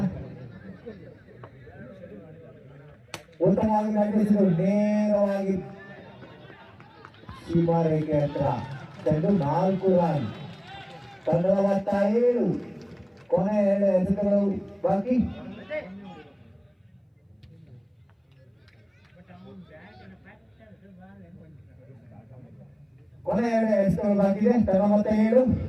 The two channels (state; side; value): identical; both; correlation 1.00